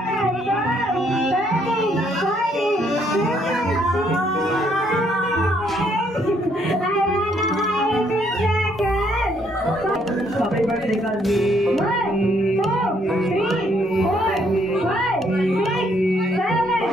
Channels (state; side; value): normal; both; correlation 0.69